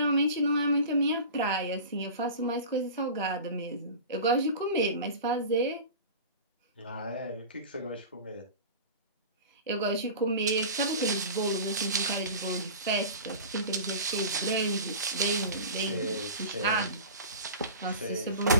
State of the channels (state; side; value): inverted; both; correlation -0.35